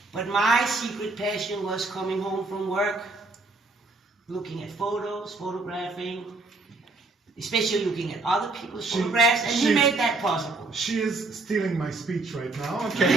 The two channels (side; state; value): left; quieter; 3.4 dB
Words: But my secret passion was coming home from work, looking at photos, photographing, especially looking at other people's photographs, and he made that possible. She is stealing my speech right now. Okay,